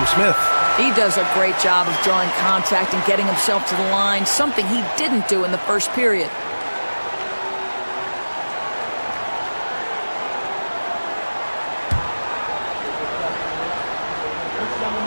Smith. He does a great job of drawing contact and getting himself to the line, something he didn't do in the first period.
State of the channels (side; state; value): both; inverted; correlation -1.00